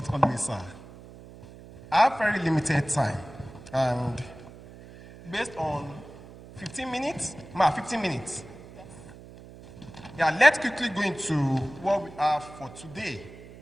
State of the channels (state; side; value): noise; right; hum, 18 dB below the sound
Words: always, sir. I have very limited time, and based on 15 minutes, ma, 15 minutes. Yeah, let's quickly go into what we have for today